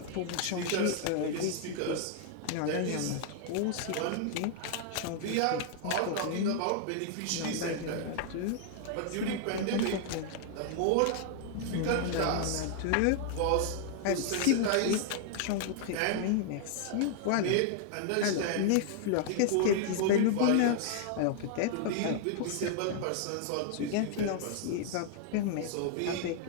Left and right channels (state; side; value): different; both; correlation 0.00